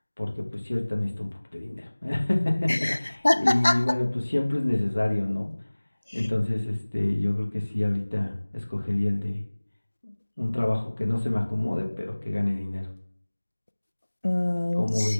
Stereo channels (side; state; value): both; inverted; correlation -1.00